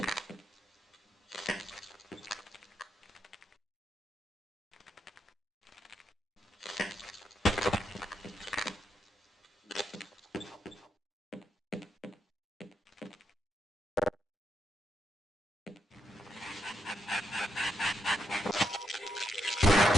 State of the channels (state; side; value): normal; both; correlation 0.80